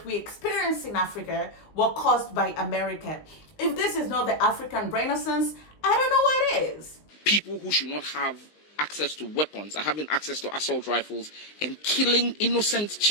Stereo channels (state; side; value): late; right; 19 ms